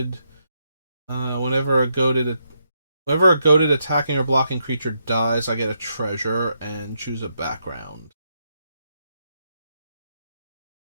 Whenever a goaded attacking or blocking creature dies, I get a treasure and choose a background.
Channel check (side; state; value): both; inverted; correlation -0.80